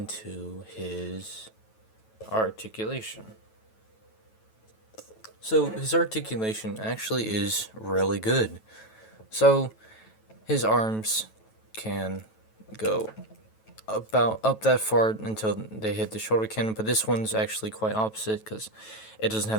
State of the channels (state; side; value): late; right; 9.2 ms